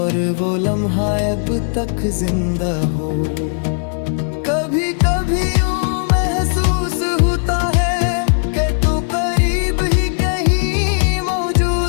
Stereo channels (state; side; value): silent; right; digital silence